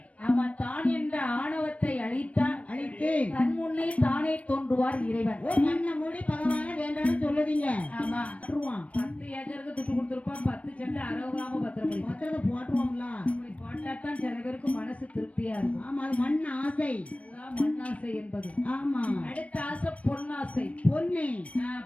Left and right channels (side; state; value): right; late; 0.065 ms